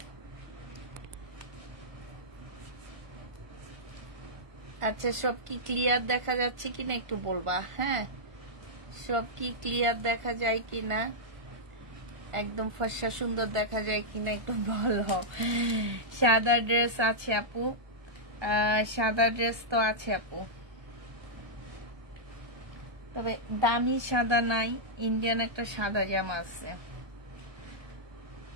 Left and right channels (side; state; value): left; late; 1.3 ms